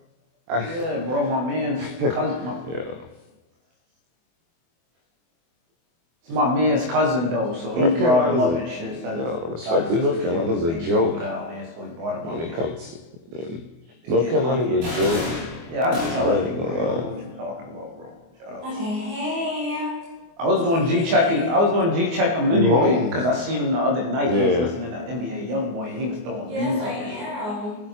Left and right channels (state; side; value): late; left; 24 ms